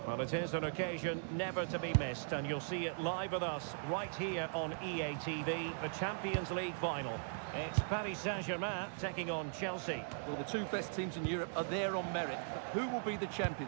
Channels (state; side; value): silent; left; digital silence